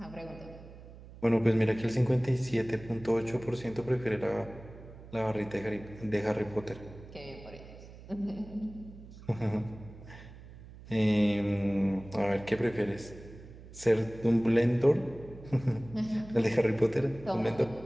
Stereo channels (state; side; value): noise; right; hum, 17 dB below the sound